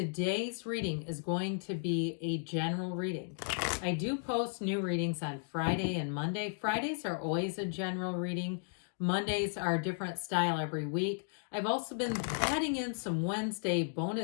reading is going to be a general reading. I do post new readings on Friday and Monday. Fridays are always a general reading. Mondays are a different style every week. I've also been adding in some Wednesday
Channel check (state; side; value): silent; right; digital silence